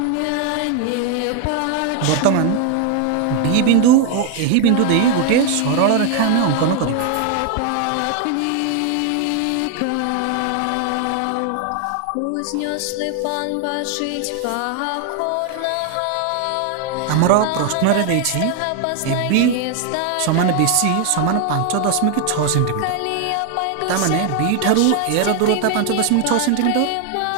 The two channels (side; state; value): both; different; correlation 0.01